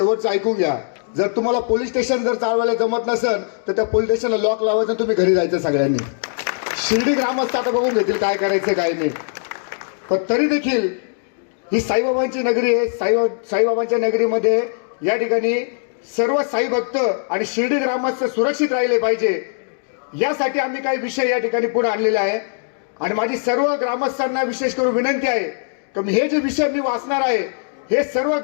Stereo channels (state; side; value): silent; right; digital silence